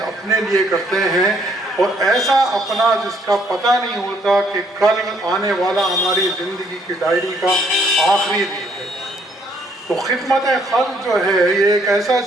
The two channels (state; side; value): normal; both; correlation 0.67